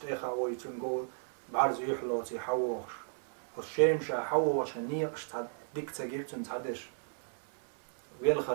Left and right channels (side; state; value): left; silent; 55 dB below the other